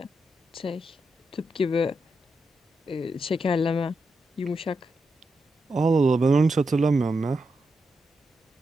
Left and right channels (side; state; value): both; normal; correlation 0.86